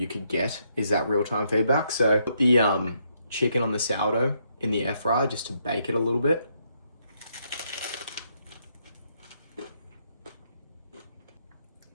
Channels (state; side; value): inverted; both; correlation -0.75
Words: could get, is that real-time feedback. So put the chicken on the sourdough in the air fryer just to bake it a little bit.